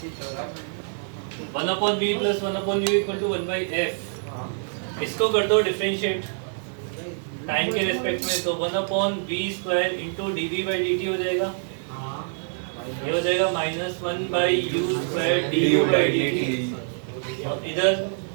1/v plus 1/u equal to 1/f। इसको कर दो डिफरेंशिएट टाइम के रेस्पेक्ट में, तो 1/v स्क्वायर इंटू dv/dt हो जाएगा। ये हो जाएगा -1/u स्क्वायर du/dt। और इधर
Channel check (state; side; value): silent; left; digital silence